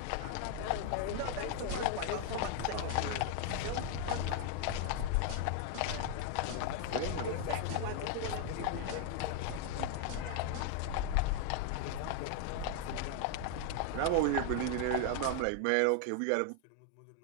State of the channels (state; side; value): different; both; correlation 0.00